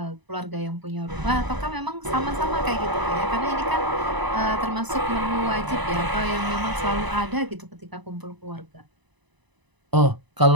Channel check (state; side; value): late; left; 1.0 ms